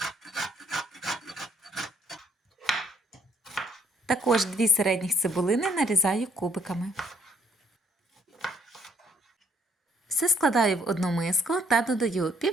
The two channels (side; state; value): both; normal; correlation 0.67